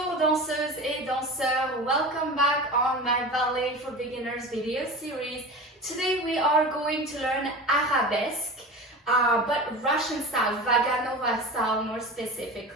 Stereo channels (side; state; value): both; normal; correlation 0.32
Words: danseuses et danseurs, welcome back on my Ballet for Beginners video series. Today we are going to learn Arabesque, but Russian style, Vaganova style more